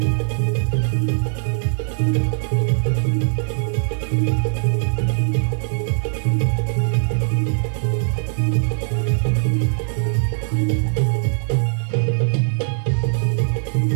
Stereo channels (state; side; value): silent; left; digital silence